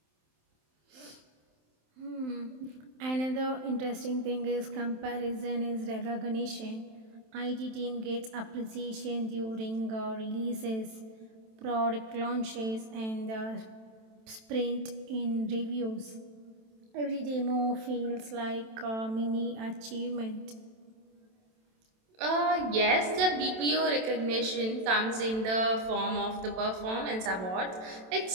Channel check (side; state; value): left; late; 27 ms